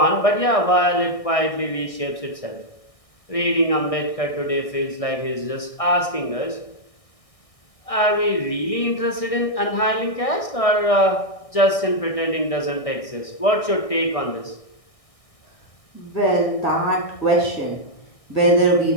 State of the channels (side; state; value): right; late; 1.6 ms